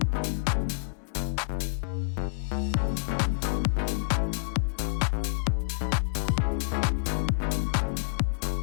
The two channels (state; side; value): silent; right; 59 dB below the other